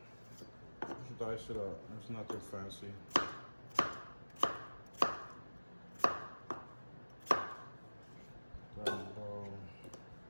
just dice it up. It's nothing fancy.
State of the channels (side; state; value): both; inverted; correlation -1.00